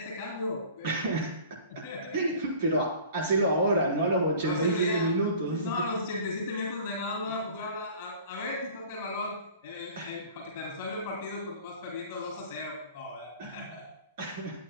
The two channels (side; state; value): both; inverted; correlation -0.45